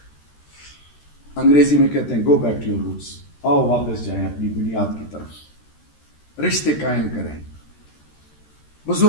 انگریزی میں کہتے ہیں go back to your roots, آؤ واپس جائیں اپنی بنیاد کی طرف، رشتے قائم کریں،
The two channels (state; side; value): late; right; 13 ms